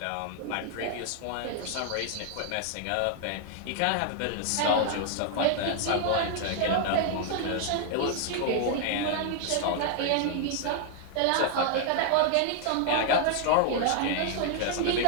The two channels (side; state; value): both; different; correlation 0.00